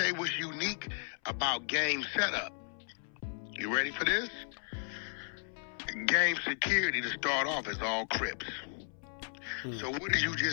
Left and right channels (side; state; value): right; silent; 55 dB below the other